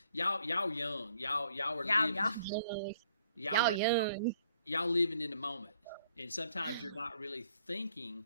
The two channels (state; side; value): inverted; both; correlation -0.65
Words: Y'all young. Y'all are living. Y'all young. Y'all living in the moment, and sometimes you're not really thinking